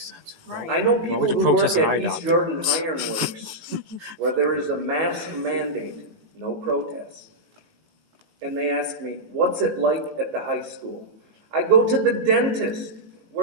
I know people would you who work protest an eye at East doctor? Jordan Ironworks where there is a mask mandate, no protests. And they ask me, what's it like at the high school? I go to the dentist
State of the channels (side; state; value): left; late; 18 ms